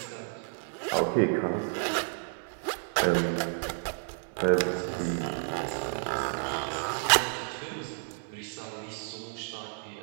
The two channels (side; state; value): left; silent; 57 dB below the other